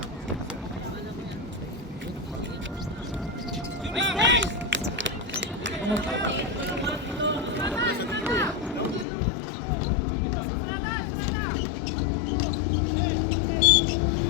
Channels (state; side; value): drops out; right; at 9.1 s